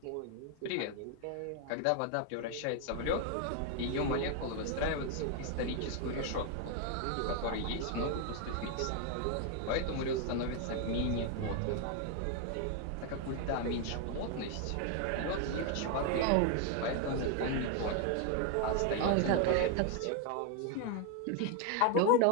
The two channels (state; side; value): different; both; correlation 0.01